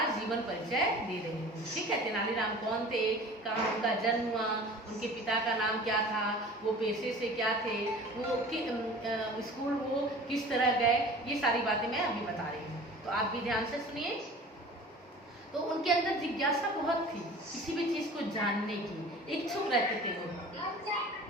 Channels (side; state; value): both; normal; correlation 0.42